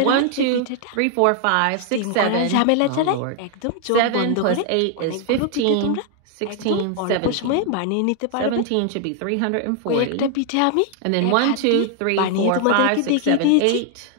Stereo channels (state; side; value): different; both; correlation 0.00